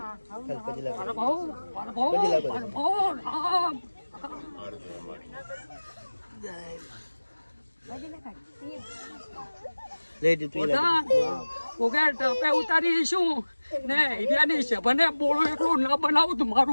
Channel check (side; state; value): both; inverted; correlation -1.00